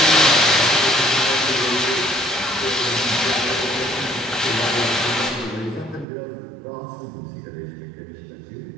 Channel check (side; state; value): left; drops out; at 6.1 s